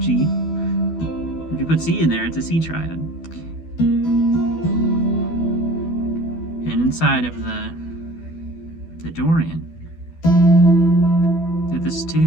G. If you put C in there, it's a C triad. And inside of the Dorian, if this is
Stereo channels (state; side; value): late; right; 12 ms